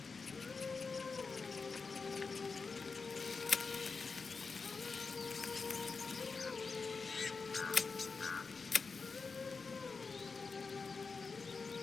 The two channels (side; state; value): right; quieter; 4.7 dB